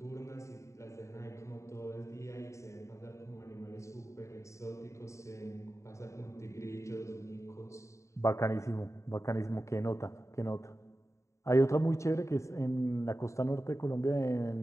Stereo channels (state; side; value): late; right; 0.14 ms